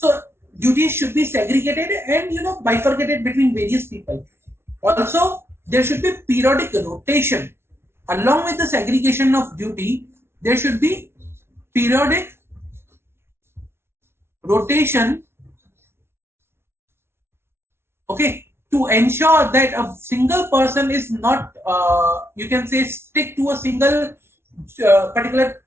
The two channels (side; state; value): left; late; 0.12 ms